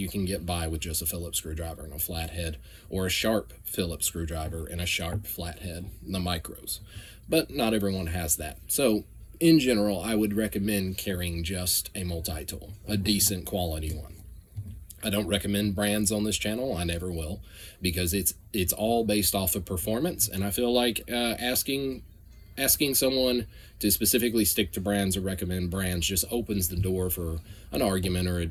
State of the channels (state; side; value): identical; both; correlation 1.00